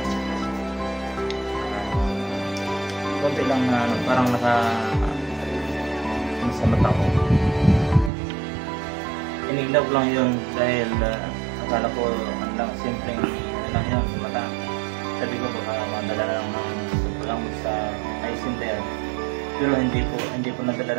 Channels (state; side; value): drops out; left; at 8.1 s